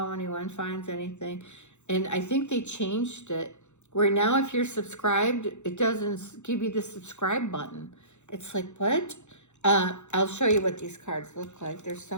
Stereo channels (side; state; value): right; late; 0.83 ms